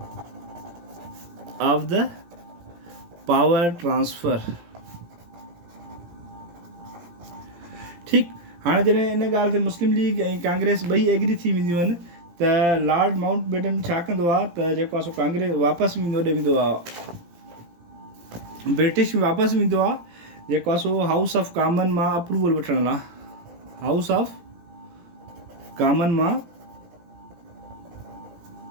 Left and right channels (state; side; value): late; left; 17 ms